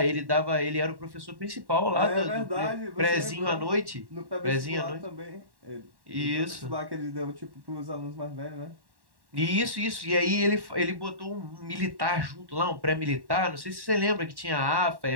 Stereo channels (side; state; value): left; late; 1.1 ms